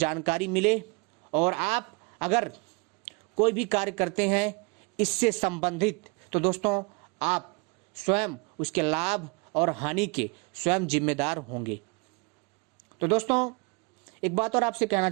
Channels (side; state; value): left; quieter; 29.8 dB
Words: मिले और आप अगर कोई भी कार्य करते हैं इससे संबंधित, तो दोस्तों आप स्वयं उसके लाभ और हानि के स्वयं जिम्मेदार होंगे। तो दोस्तों एक बात और आपसे कहना